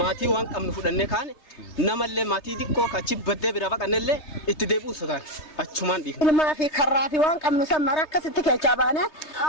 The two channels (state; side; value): late; right; 3.2 ms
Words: waan qabnu fudhannee kaane namallee maatii xiqqoo kachi baddee bira baqannellee itti deebi'uu sotaan achumaan dhiifne. Ilmaa fi karraa fi waan qabnu san mara akkasitti keechaa baane